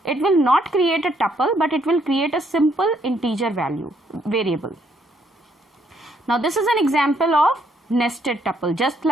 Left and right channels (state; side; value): normal; both; correlation 0.71